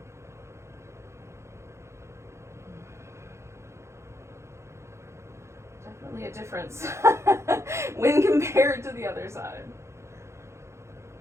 Definitely a difference when compared to the other side.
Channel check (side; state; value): left; late; 0.13 ms